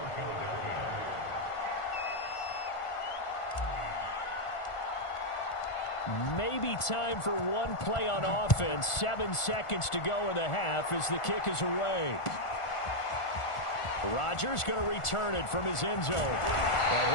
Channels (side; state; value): right; late; 1.4 ms